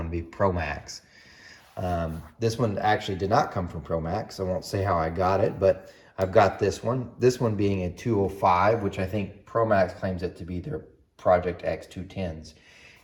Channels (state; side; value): identical; both; correlation 1.00